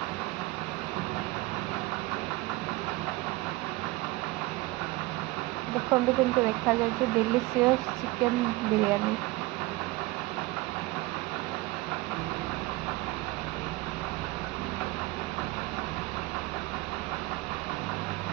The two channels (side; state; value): left; quieter; 20.6 dB